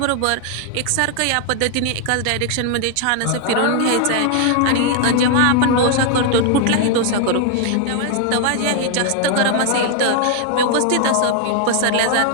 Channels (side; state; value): both; different; correlation 0.00